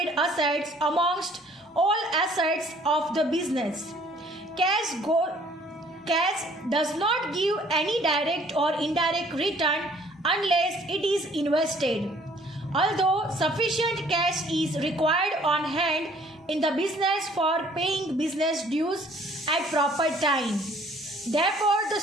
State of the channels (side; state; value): both; normal; correlation 0.58